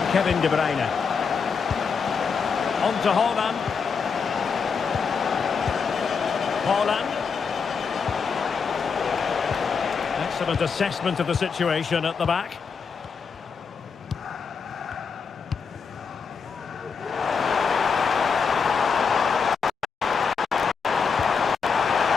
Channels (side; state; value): right; quieter; 5.8 dB